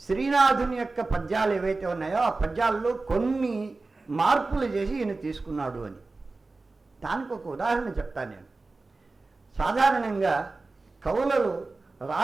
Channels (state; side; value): quieter; left; 3.5 dB